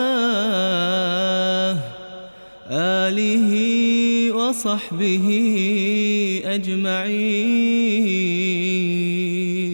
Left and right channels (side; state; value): both; inverted; correlation -1.00